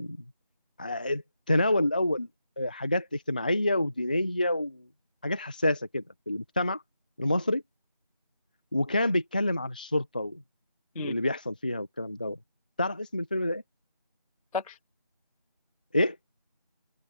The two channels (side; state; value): both; inverted; correlation -0.85